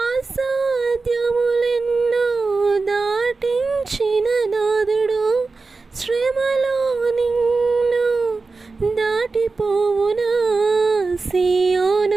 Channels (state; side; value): quieter; left; 4.0 dB